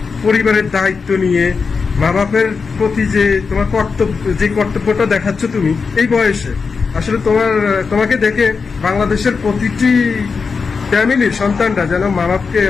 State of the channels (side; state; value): right; quieter; 5.1 dB